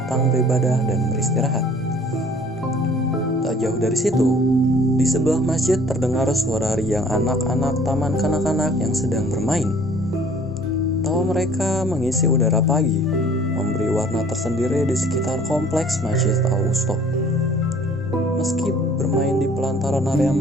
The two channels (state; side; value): normal; both; correlation 0.54